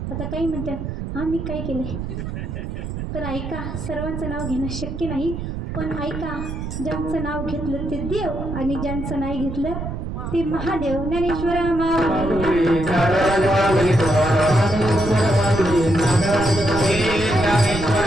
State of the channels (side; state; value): right; noise; rumble, 6 dB below the sound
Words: आता काही म्हणतात, हां मी काय केलं? तर ऐका, सर्वांचं नाव घेणं शक्य नाही, पण ऐका, ज्यांचं नाव घेतलं ते देव आणि ज्यांचं नाही घेतलं ते महादेव. ज्ञानेश्वर माऊली महाराज